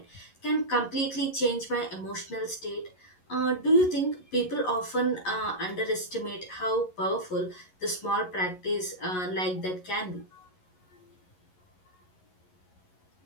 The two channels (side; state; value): right; late; 11 ms